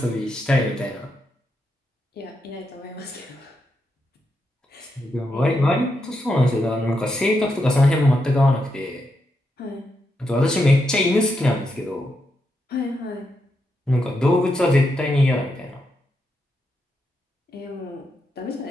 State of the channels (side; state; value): both; normal; correlation 0.83